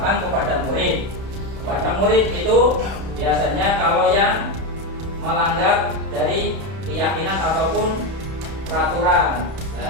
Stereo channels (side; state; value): left; late; 31 ms